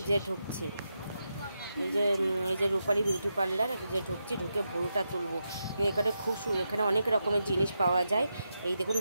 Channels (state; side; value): inverted; both; correlation -0.86